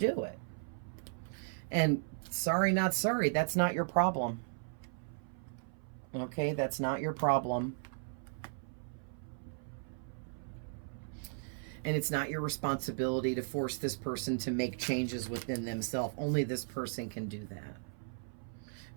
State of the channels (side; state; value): left; silent; 54 dB below the other